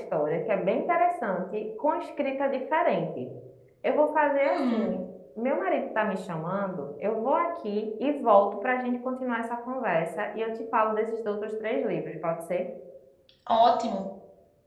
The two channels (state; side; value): identical; both; correlation 1.00